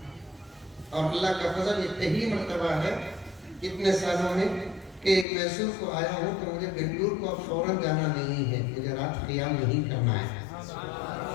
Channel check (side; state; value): right; drops out; at 5.2 s